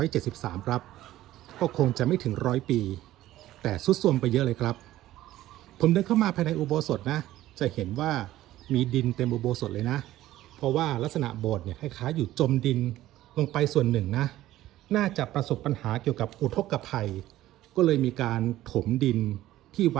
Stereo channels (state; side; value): quieter; left; 14.8 dB